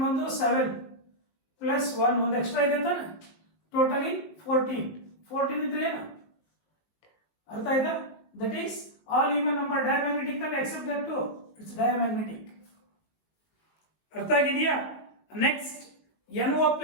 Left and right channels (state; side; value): late; right; 19 ms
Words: ಬಂದು 7 ಪ್ಲಸ್ 1 ಒಂದು ಎಕ್ಸ್ಟ್ರಾ ಇದೆ ಅಂತಾನೆ ಟೋಟಲಿ 14 ಇದ್ರೆ ಏನು ಅರ್ಥ ಆಯ್ತಾ that is all even number diamagnetic ಅಲ್ಲಿ except that two it's diamagnetic ಅರ್ಥ ಆಗಿದೆಯಾ next NO